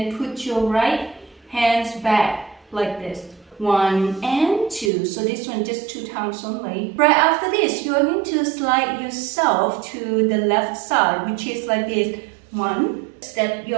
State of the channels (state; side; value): drops out; left; at 4.9 s